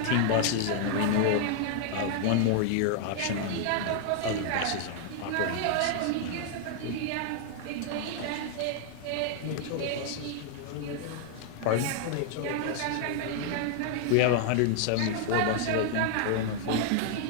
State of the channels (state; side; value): different; both; correlation 0.00